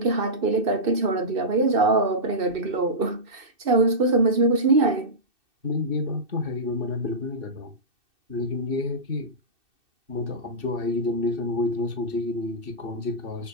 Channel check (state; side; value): late; left; 2.6 ms